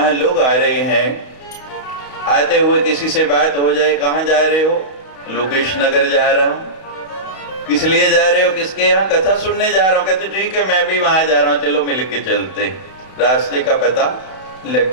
लोग आ रहे हैं, आते हुए किसी से बात हो जाए, कहां जा रहे हो? लोकेश नगर जा रहा हूं। किस लिए जा रहे हो? किसके यहाँ? कथा सुनने जा रहा हूं। कहते ठीक है, मैं भी वहां जा रहा हूं, चलो मिलके चलते। रास्ते का पता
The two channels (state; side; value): late; right; 31 ms